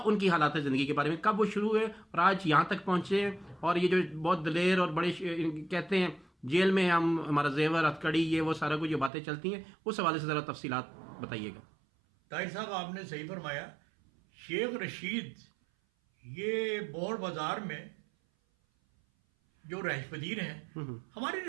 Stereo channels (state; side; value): drops out; left; at 9.1 s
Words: हालात ज़िंदगी के बारे में, कब वो शुरू हुए और आज यहाँ तक पहुँचे, और ये जो बहुत दलेर और बड़े कहते हैं जेल में हम हमारा जेवर हथकड़ी ये वो सारा कुछ जो बातें चलती हैं, उस हवाले से ज़रा तफसीलात बताइएगा। ताहिर साहब आपने सही फरमाया। शेख रशीद ये बौर बाजार में जो रहायश पजीर हैं, हमारी